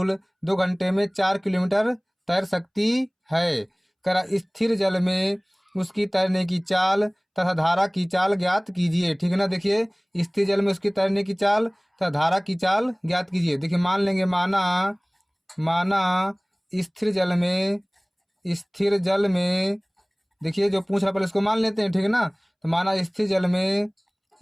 2 घंटे में 4 किलोमीटर तैर सकती है। करा स्थिर जल में उसकी तैरने की चाल तथा धारा की चाल ज्ञात कीजिए, ठीक है ना। देखिए स्थिर जल में उसकी तैरने की चाल तथा धारा की चाल ज्ञात कीजिए। देखिए मान लेंगे, माना स्थिर जल में देखिए जो पूछ रहा पहले इसको मान लेते हैं, ठीक है ना। तो माना स्थिर जल में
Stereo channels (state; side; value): identical; both; correlation 1.00